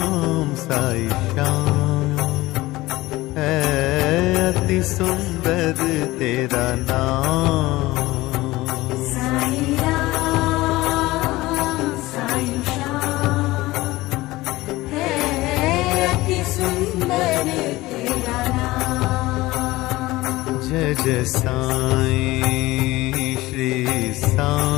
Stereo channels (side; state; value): right; quieter; 19.0 dB